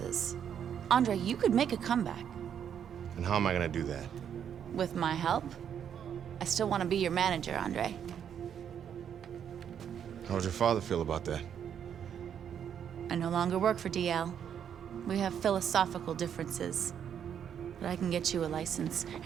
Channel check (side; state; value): left; quieter; 8.6 dB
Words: Andre, you could make a comeback. And how am I gonna do that? With my help? I still want to be your manager, Andre. How would your father feel about that? I no longer work for DL. We have philosophical differences. But I can get you a license,